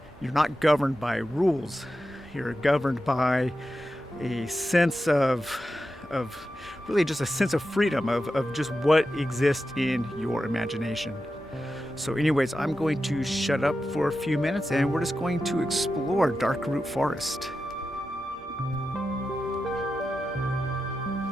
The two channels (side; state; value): both; normal; correlation 0.90